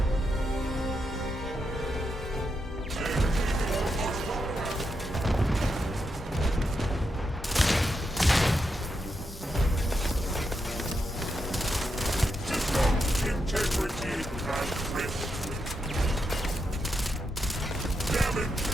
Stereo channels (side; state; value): both; normal; correlation 0.84